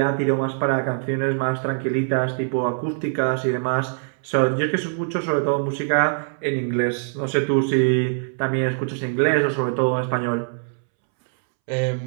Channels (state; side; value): silent; left; 64 dB below the other